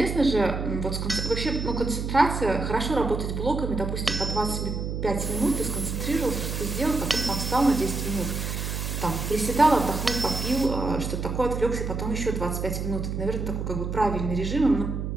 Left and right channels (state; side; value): noise; right; hum, 3 dB below the sound